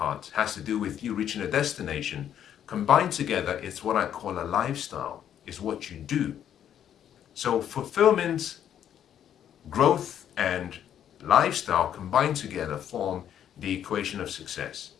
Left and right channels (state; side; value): quieter; right; 9.8 dB